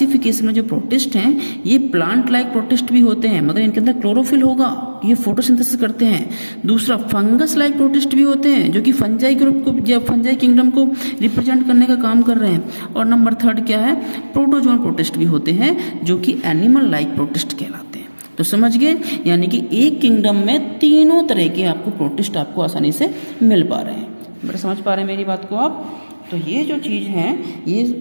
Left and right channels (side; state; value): both; inverted; correlation -1.00